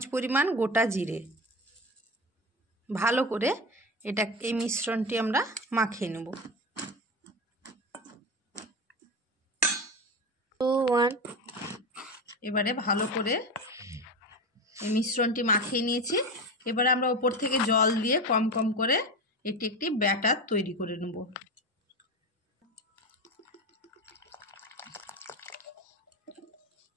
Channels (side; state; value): both; normal; correlation 0.22